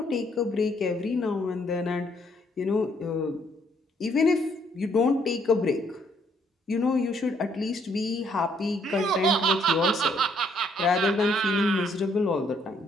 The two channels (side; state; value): both; normal; correlation 0.68